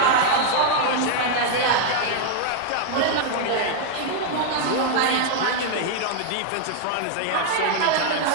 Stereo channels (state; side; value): different; both; correlation 0.00